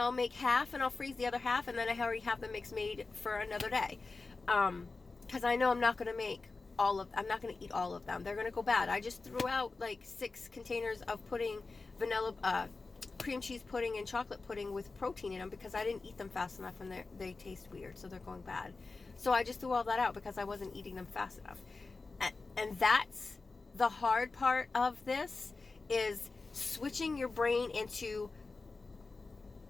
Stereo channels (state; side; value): quieter; right; 3.8 dB